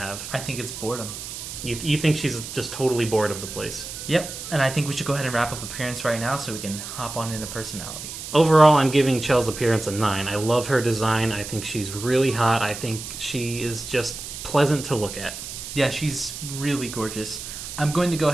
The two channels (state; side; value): noise; right; hiss, 9 dB below the sound